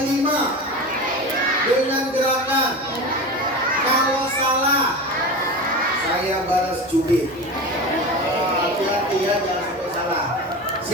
5 dengan gerakan. Kalau salah, saya balas cubit. Hati-hati ya, jangan sampai salah.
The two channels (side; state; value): both; normal; correlation 0.27